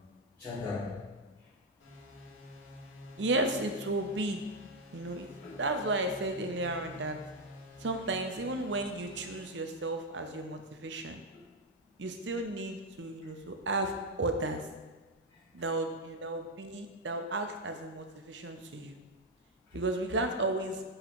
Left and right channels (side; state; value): both; normal; correlation 0.04